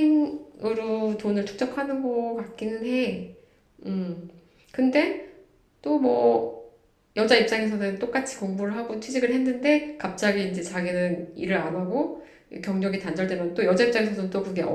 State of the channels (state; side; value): identical; both; correlation 1.00